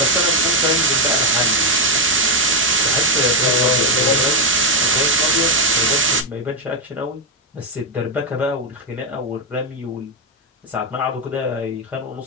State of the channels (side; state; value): both; normal; correlation 0.05